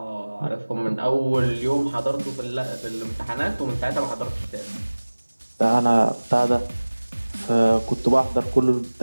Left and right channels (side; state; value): both; inverted; correlation -1.00